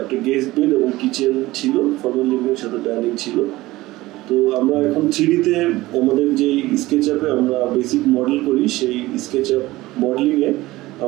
একটা গেস্ট বেড এবং কিচেন ছিল, ফর্মাল লিভিং এর সাথে ডাইনিং ছিল। তো আমরা এখন 3D-তে আমাদের যে স্কেচ আপে আমরা বেসিক মডেল করি, সেই স্কেচ আপ মডেলিংয়ে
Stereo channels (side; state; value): left; quieter; 18.4 dB